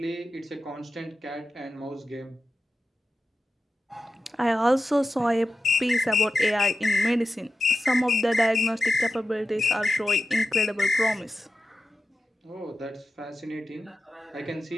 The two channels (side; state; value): both; normal; correlation 0.92